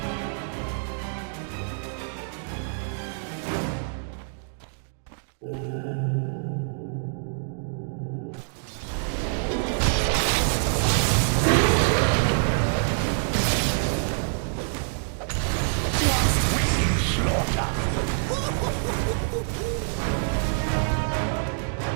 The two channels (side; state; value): left; silent; digital silence